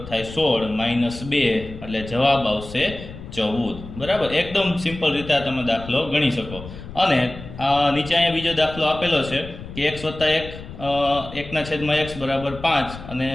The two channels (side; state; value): left; noise; rumble, 13 dB below the sound